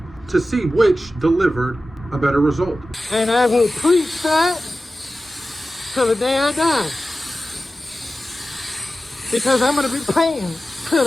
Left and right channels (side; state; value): both; normal; correlation 0.94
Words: to see which delivered a better result. And I will preach that till the day I die. Because I'm gonna be paying till